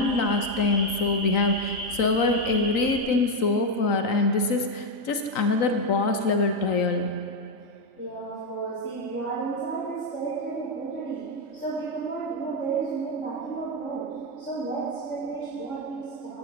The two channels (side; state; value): right; late; 3.9 ms